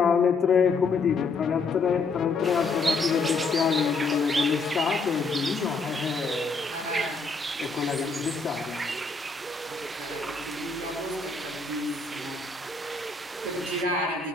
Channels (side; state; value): right; quieter; 4.0 dB